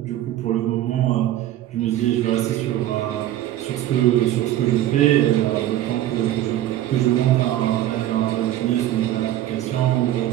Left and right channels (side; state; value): left; quieter; 13.2 dB